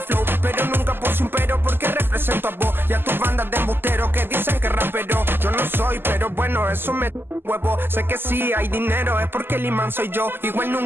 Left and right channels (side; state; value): left; late; 0.10 ms